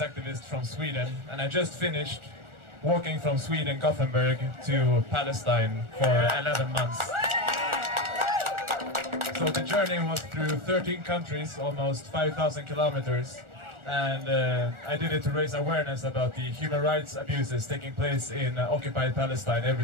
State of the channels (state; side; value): late; left; 1.4 ms